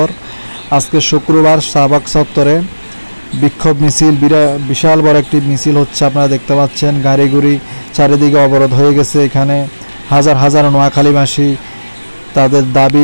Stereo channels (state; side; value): inverted; both; correlation -1.00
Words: আজকে শুক্রবার শাহবাগ চত্বরে বিক্ষোভ মিছিল, বিশাল বড় একটি মিছিল হচ্ছে। আপনারা দেখতে পাচ্ছেন গাড়িগুড়ি চারিদিকে অবরোধ হয়ে গেছে। এখানে হাজার হাজার নোয়াখালীবাসী তাদের